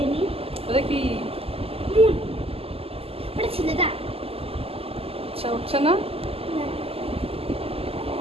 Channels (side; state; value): left; late; 0.28 ms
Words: নিই। এটা কি? মুন, ওটা ছেলেটা আচ্ছা, উঠছে না? না,